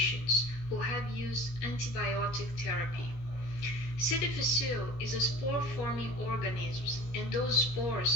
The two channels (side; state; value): right; late; 17 ms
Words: who have used antibiotic therapy. C. difficile is a spore-forming organism, and those